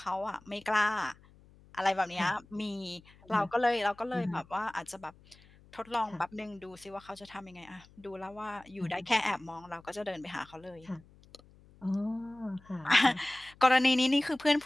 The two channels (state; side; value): noise; left; hum, 26 dB below the sound